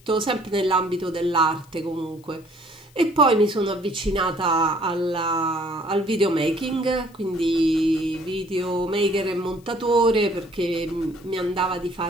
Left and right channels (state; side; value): noise; left; hiss, 29 dB below the sound